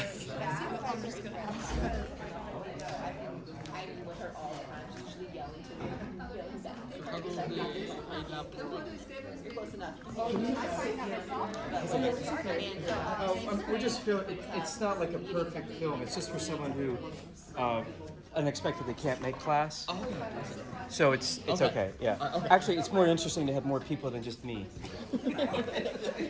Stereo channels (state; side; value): identical; both; correlation 1.00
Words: that. I'm just gonna ask. I'm with her all the time. She's usually yelling to me. Yelling back. You're close enough. We're just feeling, it's not like a perfect film, it's just for someone who unexpectedly can't make class. So it's okay, yeah. Actually, it's more interesting to have more people than just me.